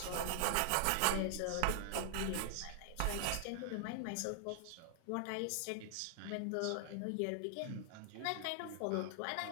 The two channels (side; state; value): both; different; correlation 0.00